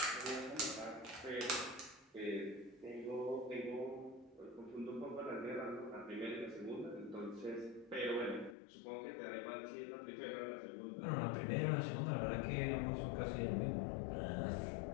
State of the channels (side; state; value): right; drops out; at 8.6 s